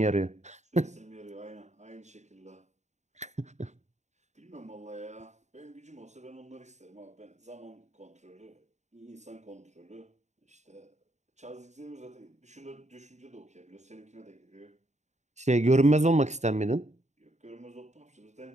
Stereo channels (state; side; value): late; left; 0.34 ms